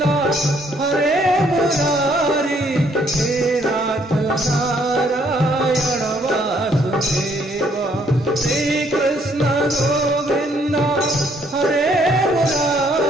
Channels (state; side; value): normal; both; correlation 0.67